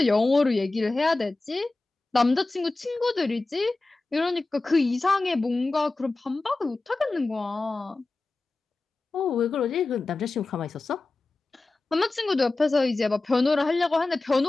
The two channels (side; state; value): right; quieter; 3.3 dB